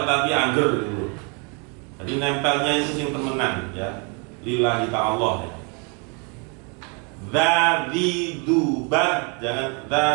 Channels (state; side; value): quieter; left; 34.4 dB